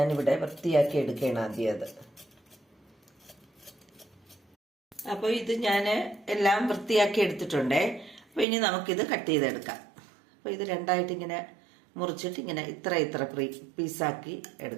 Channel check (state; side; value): drops out; left; at 8.5 s